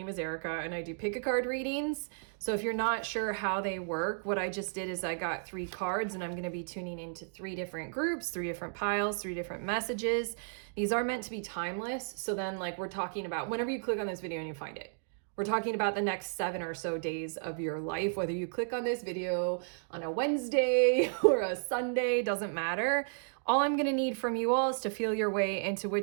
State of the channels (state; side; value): silent; left; digital silence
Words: is Erica and I do pick a card readings. So if you're not sure how they work, what I just did is I got 3 cards and I'm going to be tuning into 3 different groups, 3 different piles, 3 different messages. These are meant to be timeless. So then we're talking about whenever you click on this video and you find it. We're talking about the next 7 or so days of your life, whether you click on this video on a Wednesday or a Sunday, doesn't matter. All I'm going to need from you all is to feel your way into